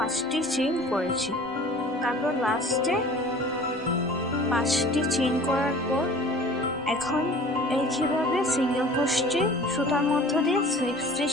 চেইন করেছি। তারপর লাস্টে 5টি চেইন করার পর এখন একইভাবে সিঙ্গেল ক্রোশে সুতার মধ্য দিয়ে স্লিপ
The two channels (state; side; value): normal; both; correlation 0.45